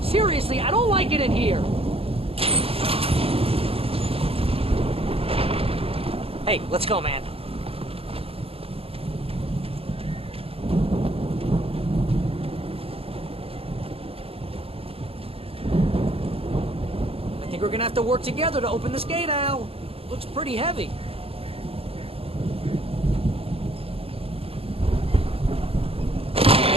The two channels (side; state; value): left; late; 0.28 ms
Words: Seriously, I don't like it in here. Hey, let's go, man. I think we're gonna have to work together to open this gate, Al. Looks pretty heavy.